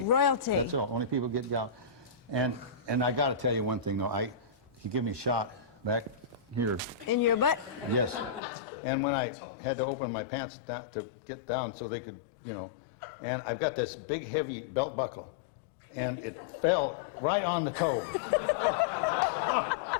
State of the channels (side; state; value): right; drops out; at 8.4 s